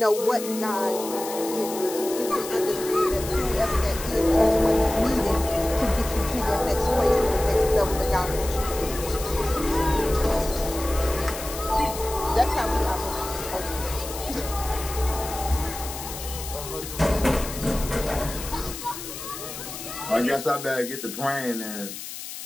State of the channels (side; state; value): left; noise; hiss, 10 dB below the sound